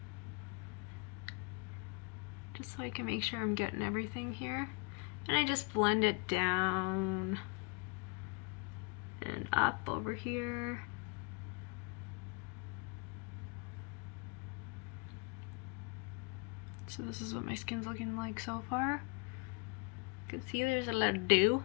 Just so I can make sure I'm getting everything here. And I just blend it down and up over here. So this is what my skin's looking like so far. You can see there's a lot of dew,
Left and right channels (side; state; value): right; quieter; 31.5 dB